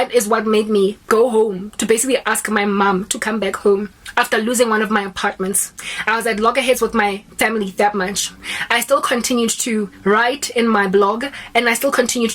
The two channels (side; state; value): both; identical; correlation 1.00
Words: is what made me go home to basically ask my mom to come back home after losing one of my apartments. I was at loggerheads with my family that much. I still continued to write in my blog, and I still continued